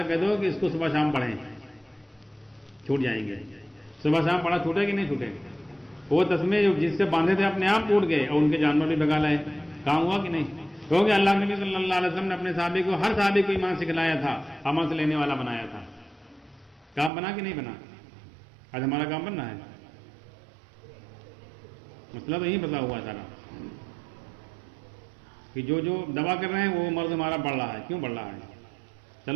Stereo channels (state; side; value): drops out; left; at 17.1 s